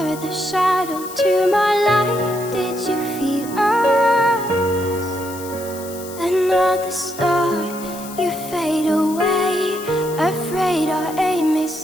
with a shadow to my light. Did you feel us? Another star, you fade away. Afraid our aim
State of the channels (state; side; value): noise; left; hiss, 15 dB below the sound